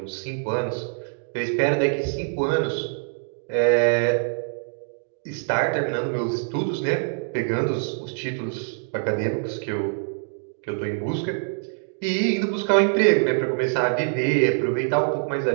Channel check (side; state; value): left; silent; digital silence